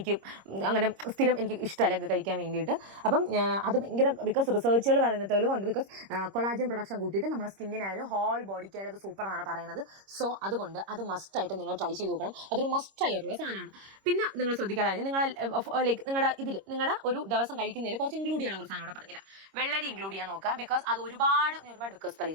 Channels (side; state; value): left; late; 26 ms